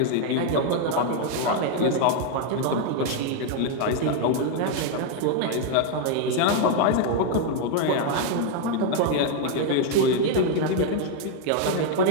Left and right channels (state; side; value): different; both; correlation 0.00